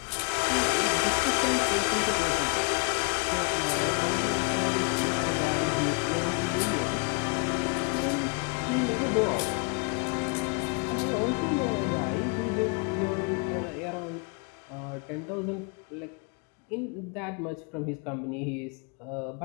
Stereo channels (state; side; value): quieter; right; 36.7 dB